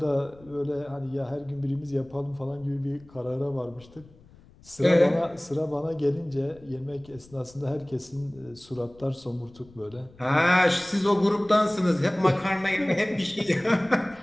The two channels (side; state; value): left; noise; rumble, 25 dB below the sound